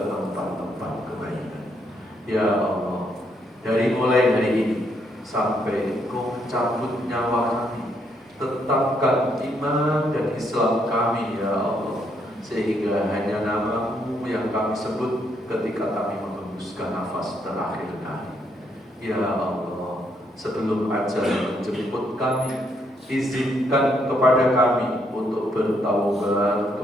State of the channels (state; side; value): normal; both; correlation 0.74